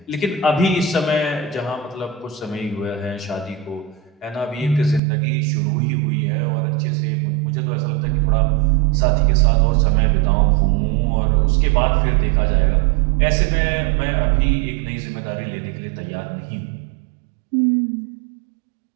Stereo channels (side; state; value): left; drops out; at 5.0 s